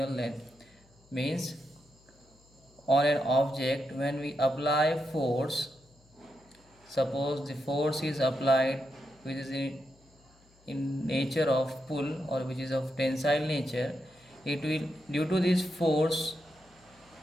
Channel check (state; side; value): noise; left; hum, 30 dB below the sound